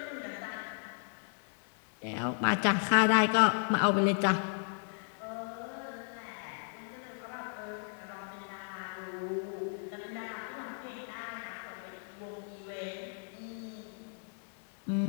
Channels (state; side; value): silent; right; digital silence